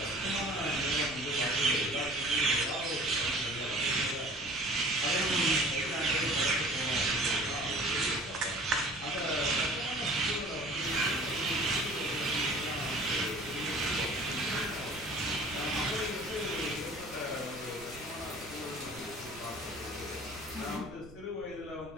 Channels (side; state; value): right; noise; rumble, 20 dB below the sound